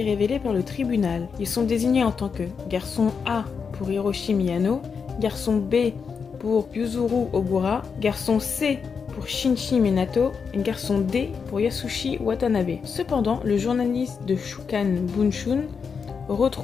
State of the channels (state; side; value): quieter; right; 5.9 dB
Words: révélée par le tribunal. Ils sont désignés en tant que garçon A pour Hiroshi Miyano, garçon B pour Yuzuru Ogura, garçon C pour Shinji Minato et garçon D pour Yasushi Watanabe. Cependant, le journaliste de Shukan Bunshun